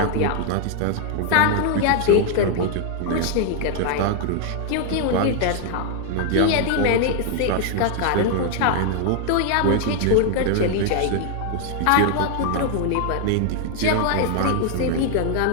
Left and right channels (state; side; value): different; both; correlation 0.00